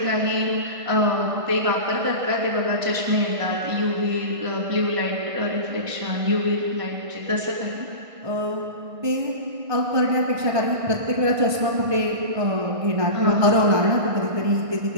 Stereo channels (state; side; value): late; left; 1.5 ms